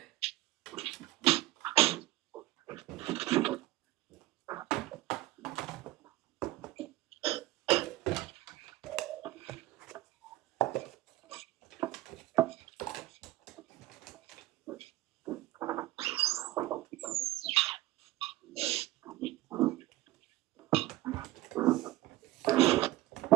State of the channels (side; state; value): left; quieter; 17.1 dB